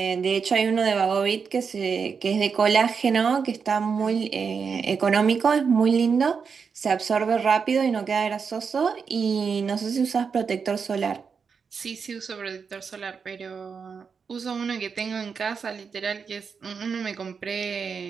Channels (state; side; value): quieter; left; 5.9 dB